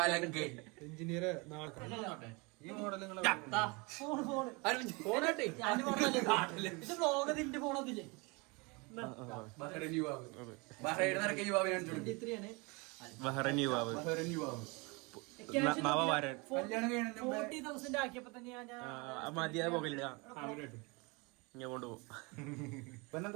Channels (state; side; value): quieter; left; 28.0 dB